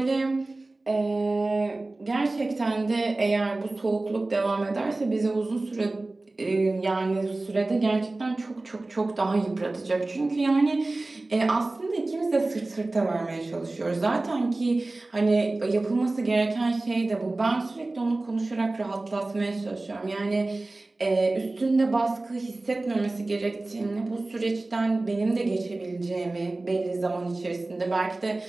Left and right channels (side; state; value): left; quieter; 3.0 dB